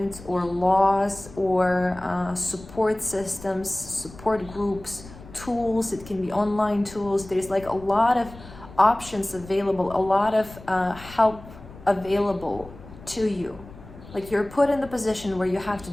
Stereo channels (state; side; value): noise; left; rumble, 18 dB below the sound